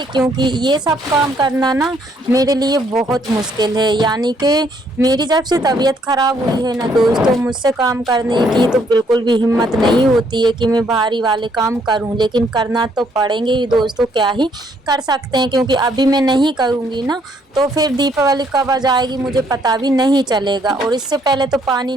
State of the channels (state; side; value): normal; both; correlation 0.68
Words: क्योंकि ये सब काम करना ना मेरे लिए बहुत मुश्किल है। यानी कि मेरी जब से तबीयत ख़राब हुई है ना दोस्तों, मुझसे काम करने की तो बिल्कुल भी हिम्मत नहीं होती है कि मैं भारी वाले काम करूं, लेकिन करना तो पड़ेंगे ही दोस्तों, क्या ही कर सकते हैं। क्योंकि अभी मैं नहीं करूंगी ना तो फिर दीपावली कब आ जाएगी मुझे पता भी नहीं चलेगा। और इससे पहले तो पानी